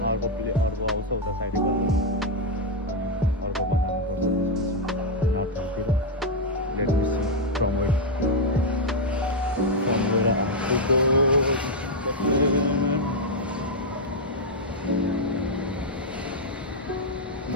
अर्को आउँछ उता साइडको अर्को बनाउनु नर्थतिर। Let me see from where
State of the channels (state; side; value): normal; both; correlation 0.01